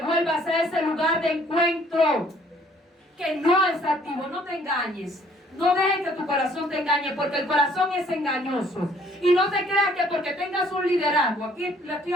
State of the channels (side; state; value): both; normal; correlation 0.61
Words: vuelvas a ese lugar de encuentro que no es activo. No te engañes. No dejes que tu corazón te engañe, porque el corazón es engañoso. Y no te creas que porque tengas un liderazgo, aquí le estoy